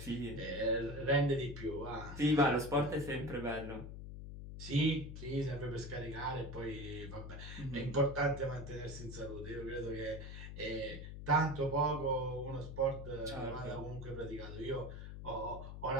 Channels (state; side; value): noise; left; hum, 9 dB below the sound